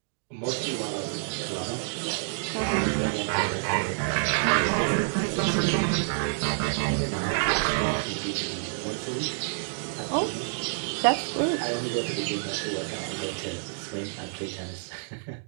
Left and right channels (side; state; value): left; silent; digital silence